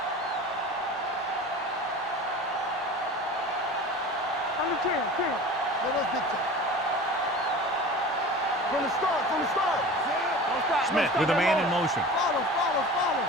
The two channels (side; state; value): both; normal; correlation 0.37